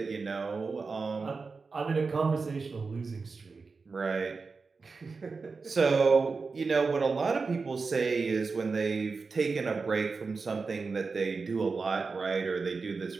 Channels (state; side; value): quieter; left; 4.5 dB